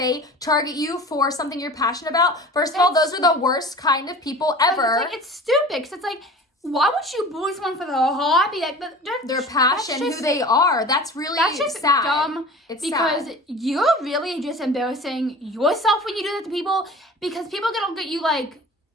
target you for something you're passionate about, first of all, those are the worst kind of people ever. It's stupid, because it's like, why would you bully someone for their hobby? Like, their passion, who they are. That's really sad. Dumb. It's because sad. You're really just embarrassing yourself when you do that to people, because people are gonna look at you like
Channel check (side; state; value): both; normal; correlation 0.39